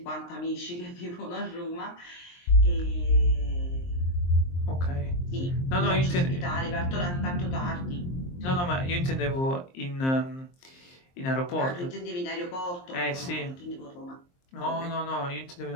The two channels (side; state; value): right; late; 23 ms